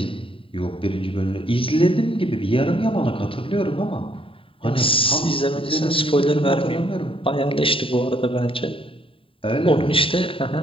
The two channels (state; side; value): late; right; 0.26 ms